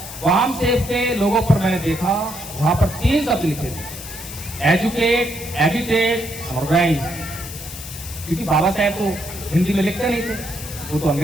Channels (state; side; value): noise; left; hiss, 12 dB below the sound